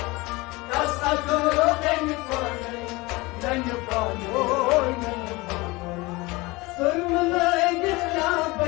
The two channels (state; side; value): quieter; right; 23.0 dB